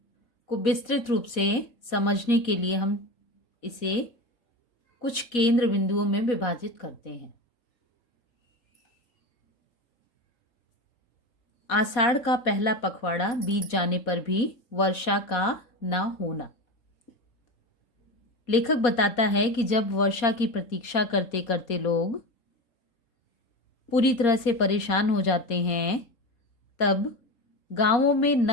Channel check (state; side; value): late; right; 4.1 ms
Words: विस्तृत रूप से समझने के लिए हम इसे कुछ केंद्र बिंदुओं में विभाजित करते हैं। आषाढ़ का पहला पखवाड़ा बीत जाने पर भी वर्षा का न होना। लेखक बताता है कि जब वर्षा की प्रतीक्षा करते करते लोग पूरी तरह से परेशान हो जाते हैं, तब गांवों में